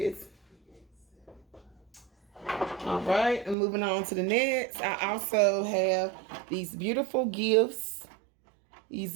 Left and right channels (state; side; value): drops out; left; at 3.6 s